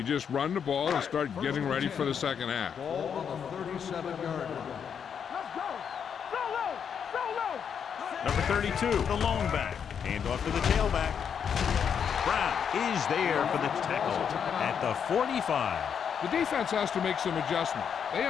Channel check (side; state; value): right; quieter; 7.5 dB